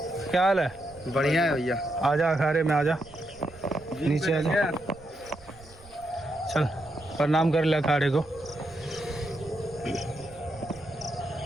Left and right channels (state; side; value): noise; right; rumble, 23 dB below the sound